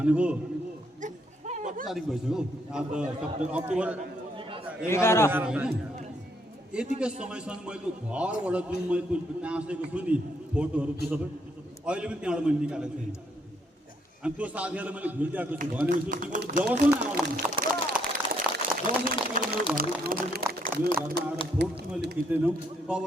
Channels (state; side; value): normal; both; correlation 0.72